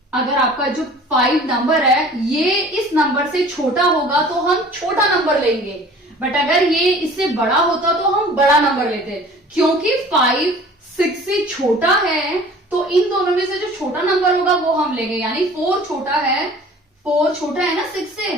अगर आपका जो 5 नंबर है ये इस नंबर से छोटा होगा तो हम छोटा नंबर लेंगे, बट अगर ये इससे बड़ा होता तो हम बड़ा नंबर लेते, क्योंकि 5 6 से छोटा है तो इन दोनों में से जो छोटा नंबर होगा वो हम लेंगे, यानी 4 छोटा है, 4 छोटा है ना 6 से,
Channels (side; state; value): both; normal; correlation 0.46